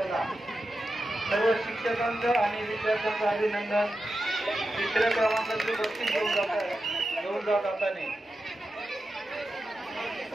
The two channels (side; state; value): both; normal; correlation 0.90